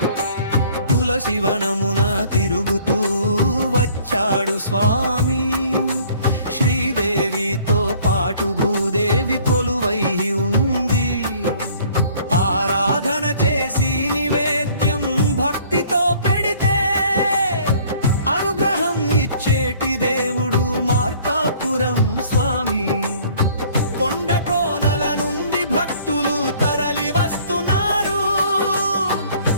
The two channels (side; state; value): both; inverted; correlation -0.56